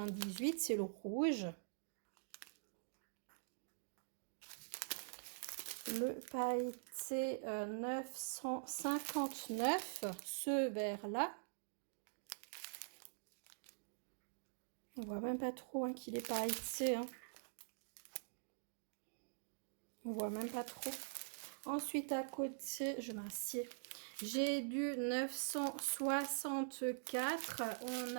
c'est le rouge. Le pailleté 959, ce vert-là. On voit même pas trop hein, qu'il est pailleté. Hein. On voit même pas trop. Ensuite, à côté, je m'assieds. J'ai du 964. On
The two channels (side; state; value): left; silent; digital silence